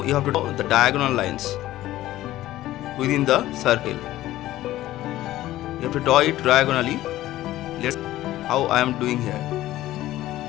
you have to draw the diagonal lines within the circle. You have to draw it diagonally. Let's see how I am doing here.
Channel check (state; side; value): quieter; right; 15.1 dB